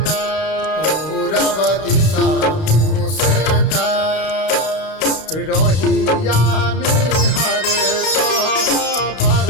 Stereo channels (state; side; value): late; right; 32 ms